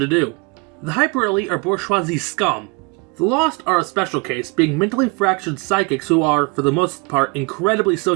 do. The hyper-elite are bourgeoisie scum. The Lost are a special case, being mentally fractured psychics who are, for the most part, incredibly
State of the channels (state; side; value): quieter; left; 29.8 dB